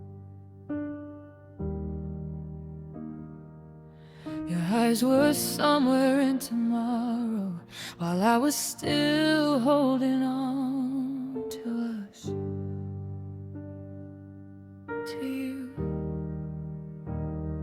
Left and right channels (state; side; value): identical; both; correlation 1.00